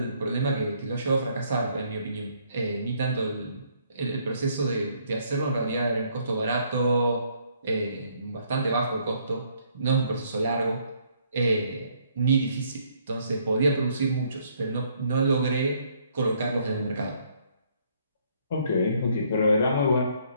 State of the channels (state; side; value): inverted; both; correlation -0.67